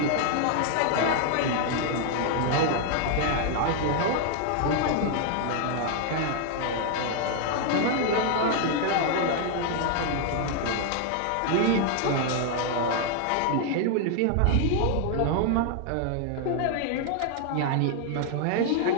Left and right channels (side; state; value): both; different; correlation 0.00